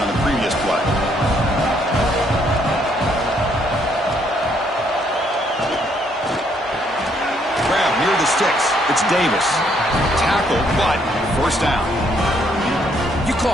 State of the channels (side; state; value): both; normal; correlation 0.70